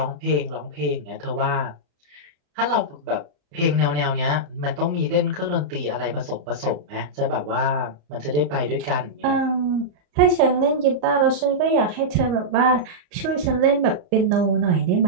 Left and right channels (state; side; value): late; left; 34 ms